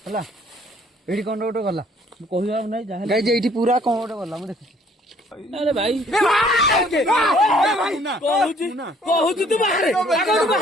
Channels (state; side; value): normal; both; correlation 0.60